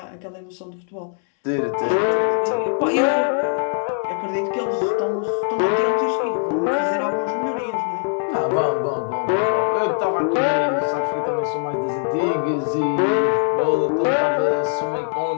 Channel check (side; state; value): right; silent; digital silence